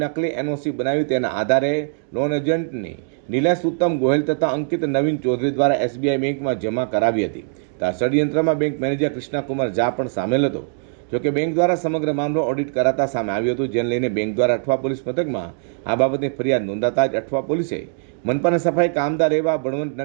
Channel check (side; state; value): left; silent; digital silence